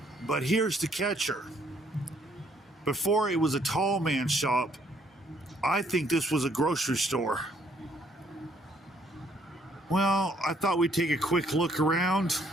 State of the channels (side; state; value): both; normal; correlation 0.67